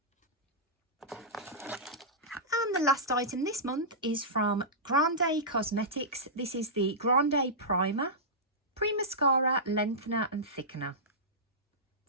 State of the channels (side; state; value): both; normal; correlation -0.14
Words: And the last item this month is from Grande Cosmetics. This is the Grande Primer, Pre-Mascara, Lengthener and Thickener.